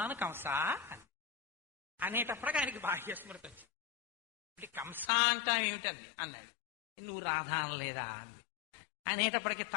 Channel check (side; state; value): right; drops out; at 5.1 s